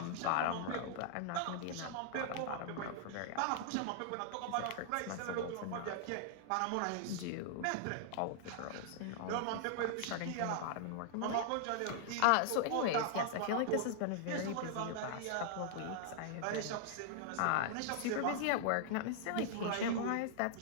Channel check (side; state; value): both; different; correlation -0.01